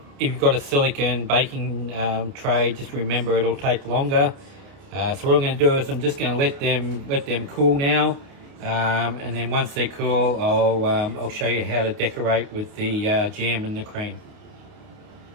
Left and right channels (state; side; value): late; left; 28 ms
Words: you've got a silicon baking tray, just remember it'll take longer. So what I'm going to do is I'm just going to let them cool now, and then once they're cool, I'll show you how to decorate with the jam and the cream.